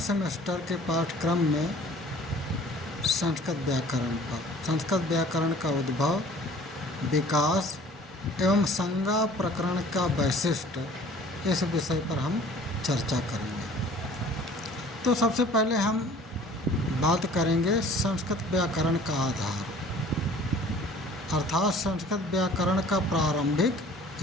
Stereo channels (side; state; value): both; normal; correlation 0.50